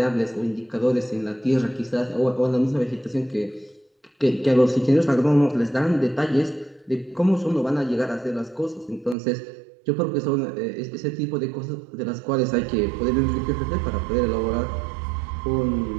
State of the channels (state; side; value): drops out; left; at 9.2 s